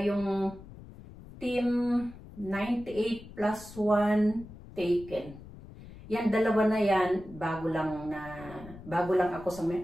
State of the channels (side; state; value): left; noise; rumble, 17 dB below the sound